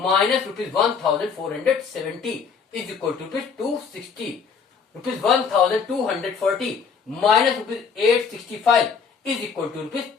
₹1470 is equal to ₹260, ₹1240 minus ₹865 is equal to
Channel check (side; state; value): right; quieter; 5.9 dB